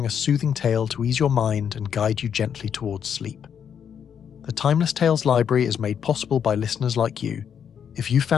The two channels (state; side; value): quieter; right; 8.0 dB